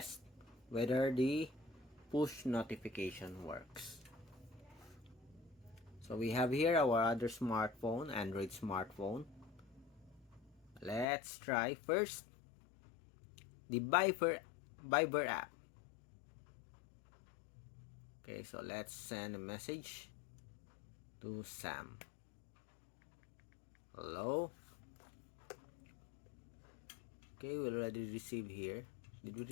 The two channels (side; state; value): right; drops out; at 11.1 s